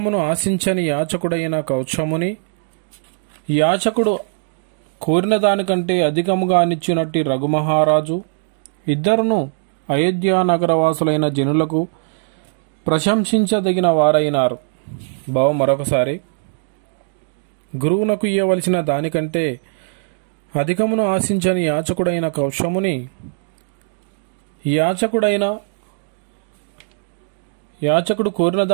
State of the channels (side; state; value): left; silent; digital silence